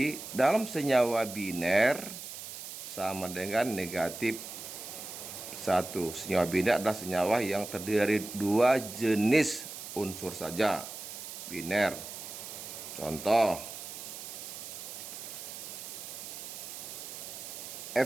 dalam senyawa biner sama dengan negatif 1. Senyawa biner adalah senyawa yang terdiri dari 2 jenis unsur saja, biner. Contoh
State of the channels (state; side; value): noise; right; hiss, 10 dB below the sound